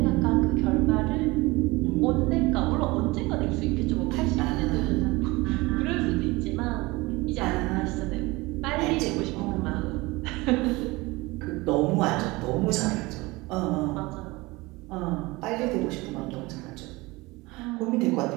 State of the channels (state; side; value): quieter; left; 22.4 dB